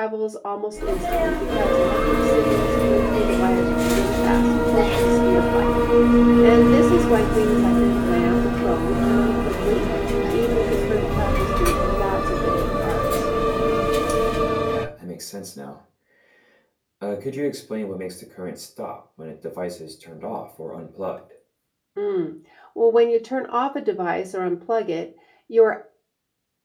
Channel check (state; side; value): identical; both; correlation 1.00